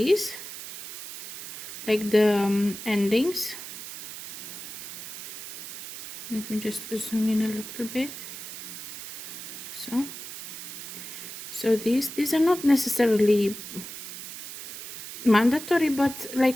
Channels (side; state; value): right; noise; hiss, 10 dB below the sound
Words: like the endings. Let me just zoom in a little bit. So these are not necessarily mandatory, but